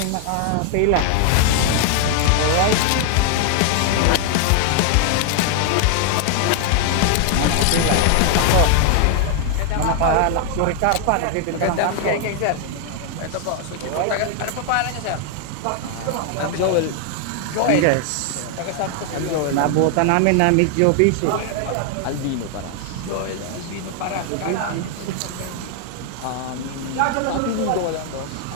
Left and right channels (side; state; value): both; different; correlation 0.00